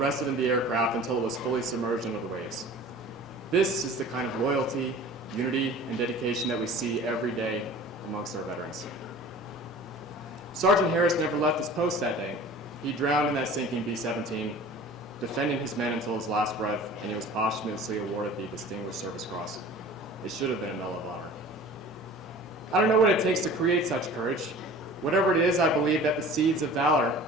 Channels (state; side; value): normal; both; correlation 0.42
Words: of them the aircraft until it was fully submerged under the waves. This is the kind of loyalty, unity, and dedication that we see every day amongst our veterans. Sergeant Harris never left his post that day. He drowned in that sinking B-17, defending his men until his last breath, and he was posthumously awarded the Distinguished Service Cross. It should have been a Medal of Honor. I don't know what it takes to create such courage. Whatever it is, I believe that the seeds of valor